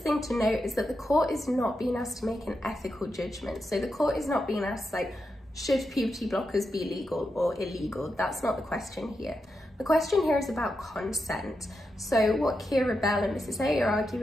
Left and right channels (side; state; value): both; normal; correlation 0.87